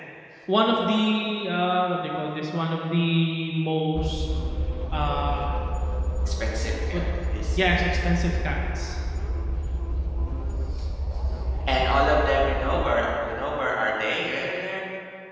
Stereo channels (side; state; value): both; identical; correlation 1.00